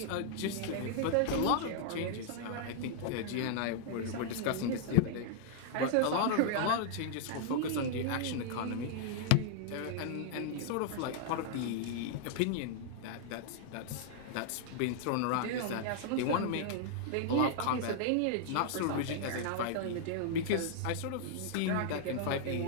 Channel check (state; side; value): different; both; correlation -0.01